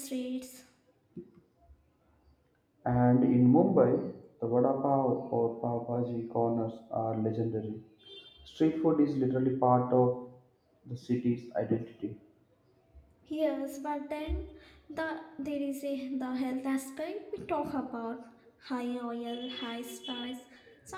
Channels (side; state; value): both; identical; correlation 1.00